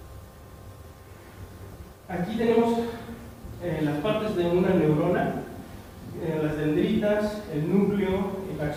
Aquí tenemos las partes de una neurona, las dendritas, el núcleo, el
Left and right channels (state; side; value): identical; both; correlation 1.00